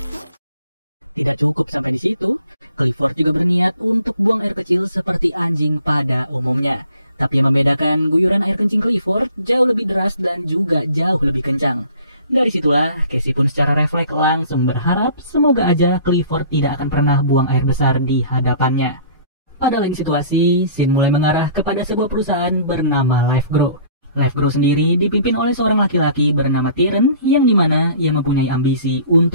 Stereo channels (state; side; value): inverted; both; correlation -0.52